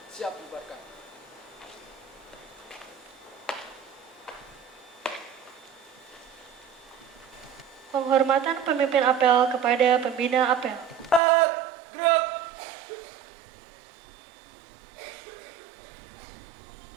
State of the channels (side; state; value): left; drops out; at 11.2 s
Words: Siap bubarkan. Penghormatan pemimpin apel kepada pembina apel. Gerak.